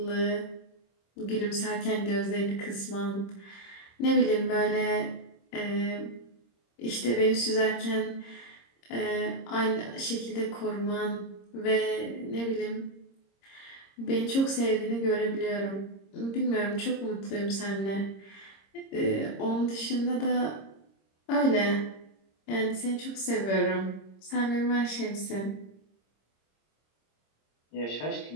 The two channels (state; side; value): late; right; 26 ms